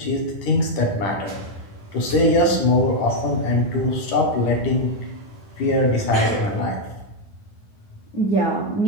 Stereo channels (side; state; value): right; late; 10 ms